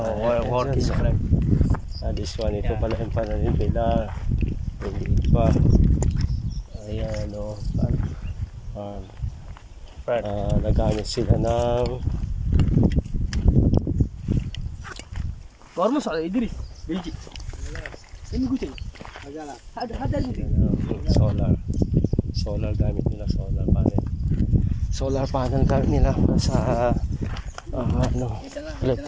work is friend. This one, ito pala yung pananim nila. Hindi pa. Ayan, o. Nagamit sila ng Gormo sa Idris. Belgi. Ini gucil. Ada solar gamit nila, solar panel gamit nila sa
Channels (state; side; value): identical; both; correlation 1.00